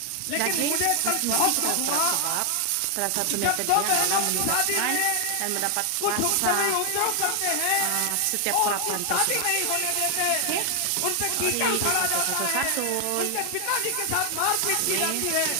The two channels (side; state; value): both; different; correlation 0.00